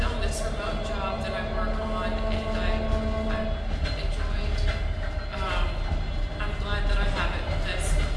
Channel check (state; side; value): identical; both; correlation 1.00